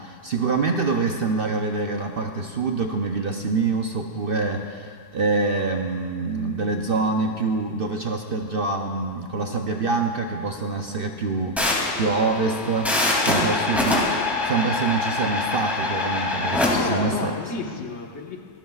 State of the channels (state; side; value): normal; both; correlation -0.01